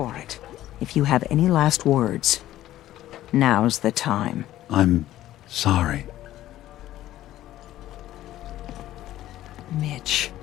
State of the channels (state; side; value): quieter; right; 13.9 dB